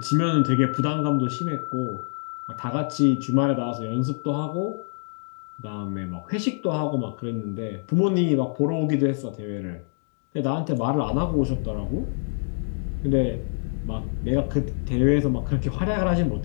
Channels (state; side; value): silent; right; digital silence